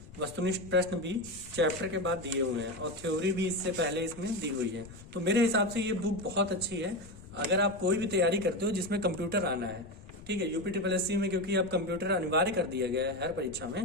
वस्तुनिष्ठ प्रश्न भी चैप्टर के बाद दिए हुए हैं, और थ्योरी भी इससे पहले इसमें दी हुई है। तो मेरे हिसाब से ये बुक बहुत अच्छी है अगर आप कोई भी तैयारी करते हो जिसमें कंप्यूटर आना है। ठीक है, यूपीट्रिपलएससी में क्योंकि अब कंप्यूटर अनिवार्य कर दिया गया है हर परीक्षा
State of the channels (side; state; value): left; noise; rumble, 18 dB below the sound